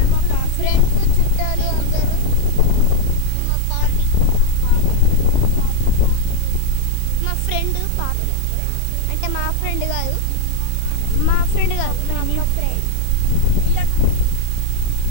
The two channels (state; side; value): different; both; correlation -0.01